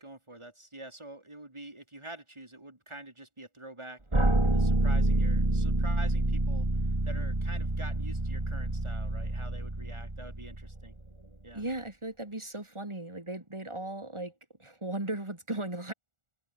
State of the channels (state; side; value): late; left; 1.4 ms